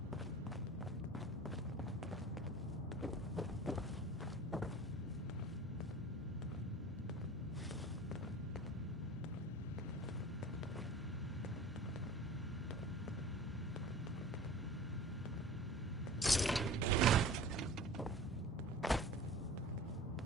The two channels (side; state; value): both; normal; correlation 0.40